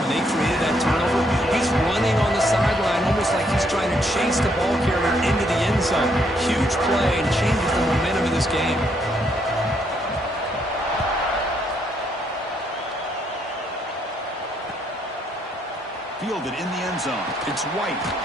they created that turnover. He's running on the sideline almost like he's trying to chase the ball carrier into the end zone. Huge play and changes the momentum of this game. Fielded in the end zone. It's White.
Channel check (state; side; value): normal; both; correlation 0.73